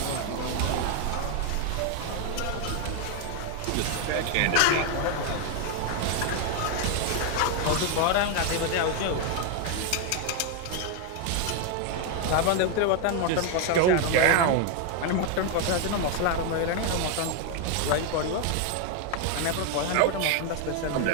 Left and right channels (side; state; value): both; different; correlation 0.01